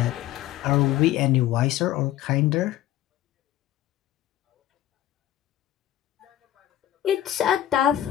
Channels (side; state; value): right; quieter; 13.2 dB